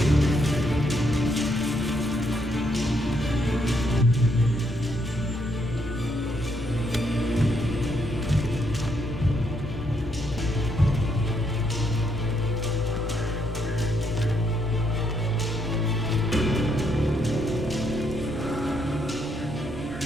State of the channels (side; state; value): both; normal; correlation 0.75